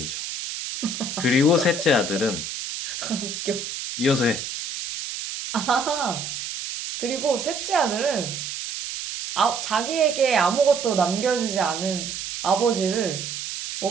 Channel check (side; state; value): right; noise; hiss, 6 dB below the sound